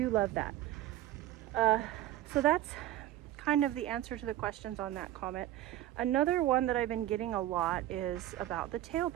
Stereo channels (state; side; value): quieter; left; 14.2 dB